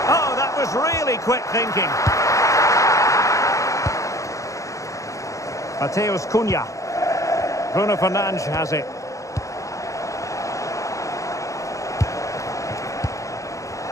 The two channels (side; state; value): right; late; 0.15 ms